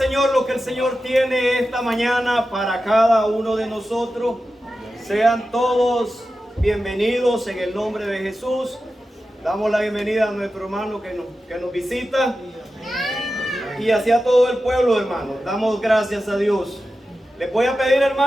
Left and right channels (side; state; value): both; normal; correlation 0.92